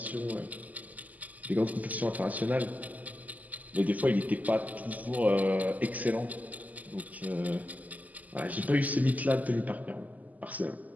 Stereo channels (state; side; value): late; left; 0.079 ms